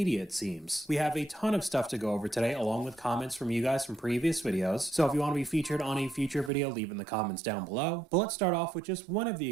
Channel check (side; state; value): left; drops out; at 6.5 s